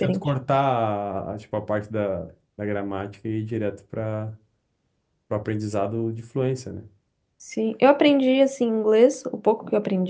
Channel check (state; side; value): identical; both; correlation 1.00